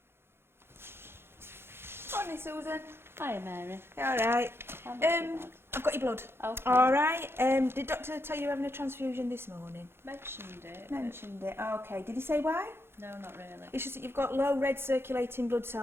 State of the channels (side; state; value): left; late; 0.11 ms